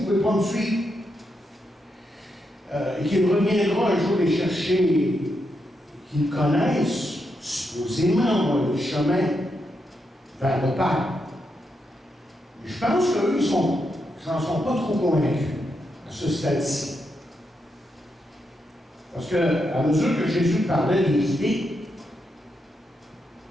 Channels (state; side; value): normal; both; correlation 0.83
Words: pouvez pas me suivre. Et qu'il reviendra un jour les chercher, qu'ils connaissent, supposément, le chemin vers le Père. Je pense qu'eux, ils n'en sont pas trop convaincus à ce stade-ci. Parce qu'à mesure que Jésus parlait des idées,